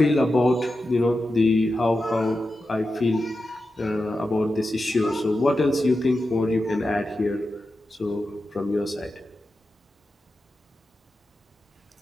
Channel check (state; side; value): normal; both; correlation 0.91